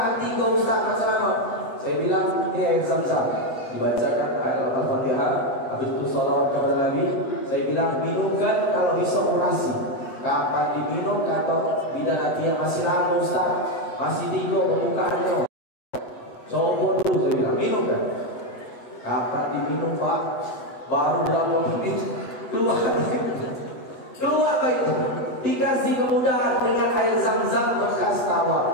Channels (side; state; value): right; late; 8.0 ms